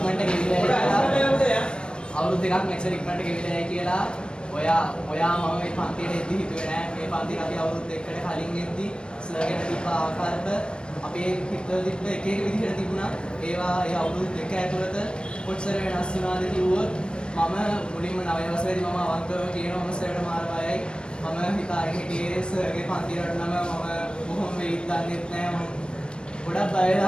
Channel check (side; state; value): right; late; 0.054 ms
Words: මෙච්චර ඉක්මනට ගෙවිලා කියලා ඔයා මම මේ පන්තියට එද්දි හිතුවේ නෑ මේ පන්තියට අපි අවුරුදු දෙකකට කලින් එද්දි සර්ගෙන තිබ්බ ආකල්ප අපේ හිතවල තිබ්බ එක විදිහට තිබුණා. ඒවා ඒ අවුරුදු දෙක ඇතුළත කොච්චර වෙනස් වුණාද කිව්වොත් මම මුලින්ම 9 වසරේදී මම අවංකව කියනවා මම සර්ට මාර බයයි. මම හිතාගෙන හිටියේ සර්ගේ පන්තියට නම් මම බොහොම වෙයිත් දන්නෙත් නෑ. මම ගොඩක් බය